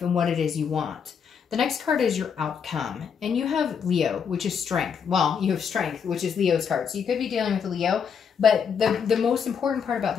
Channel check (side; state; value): right; quieter; 6.9 dB